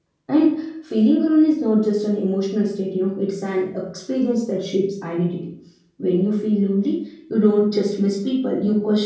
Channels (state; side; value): identical; both; correlation 1.00